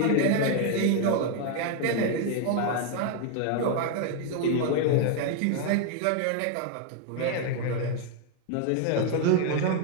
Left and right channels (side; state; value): both; different; correlation 0.00